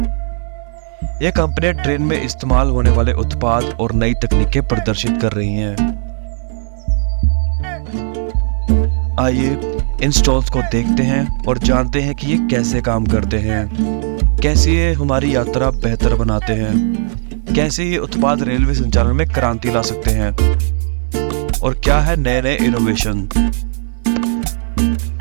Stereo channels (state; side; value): silent; left; 62 dB below the other